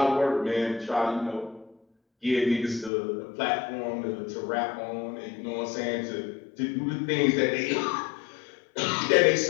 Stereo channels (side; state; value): right; drops out; at 2.9 s